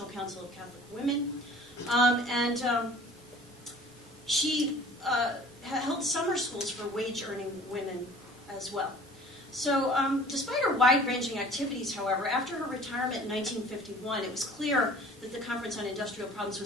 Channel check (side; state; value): both; normal; correlation 0.47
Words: Council of Catholic Women. She held summer schools for wage-earning women as well. So despite her wide-ranging activities, however, after her retirement in 1951, it was clear that the Conference on Industrial Problems